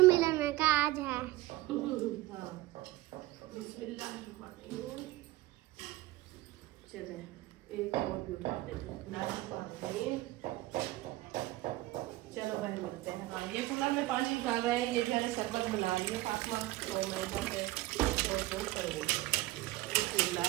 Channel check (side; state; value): left; quieter; 18.0 dB